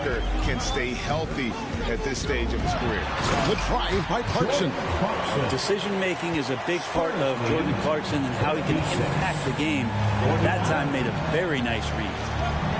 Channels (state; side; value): identical; both; correlation 1.00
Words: can stay healthy at this stage of his career. The drive by Clarkson. Decision-making is a big part of Jordan Clarkson and how he can impact the game. That time made a very nice read.